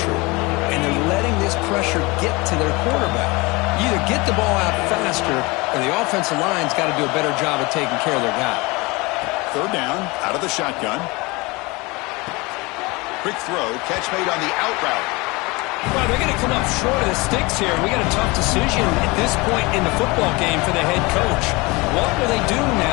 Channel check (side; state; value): right; quieter; 24.7 dB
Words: and they're letting this pressure get to their quarterback. You either get the ball out faster, or the offensive line's got to do a better job of taking care of their guy. Third down, out of the shotgun. Quick throw, catch made on the out route. Well, they're going to come up short of the sticks here. We got a tough decision at this point in the football game for the head coach. What will they do